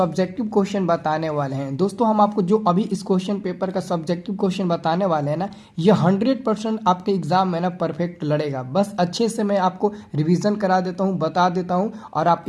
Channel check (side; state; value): both; identical; correlation 1.00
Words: क्वेश्चन बताने वाले हैं। दोस्तों हम आपको जो अभी इस क्वेश्चन पेपर का सब्जेक्टिव क्वेश्चन बताने वाले हैं ना, ये 100% आपके एग्जाम में ना परफेक्ट लड़ेगा। बस अच्छे से मैं आपको रिवीजन करा देता हूँ, बता देता हूँ और आप